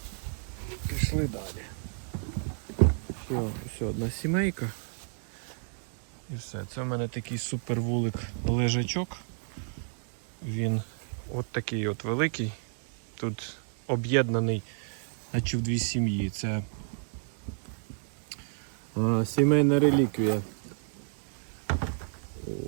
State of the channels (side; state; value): left; silent; 55 dB below the other